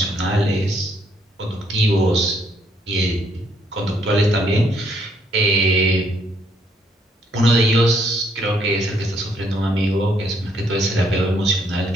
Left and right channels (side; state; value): both; normal; correlation 0.70